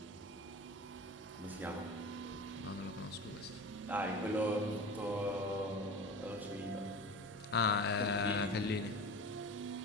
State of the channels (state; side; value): normal; both; correlation 0.33